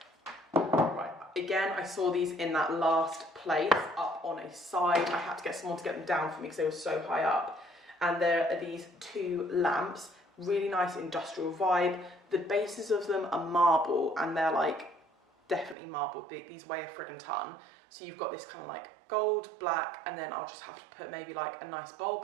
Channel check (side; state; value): left; drops out; at 15.8 s